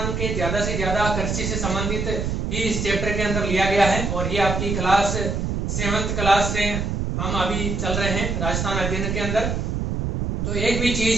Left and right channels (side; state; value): right; noise; rumble, 1 dB below the sound